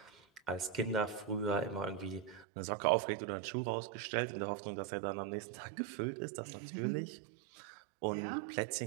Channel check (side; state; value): left; drops out; at 2.5 s